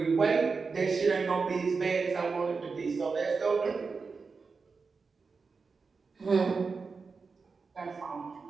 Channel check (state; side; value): quieter; left; 4.7 dB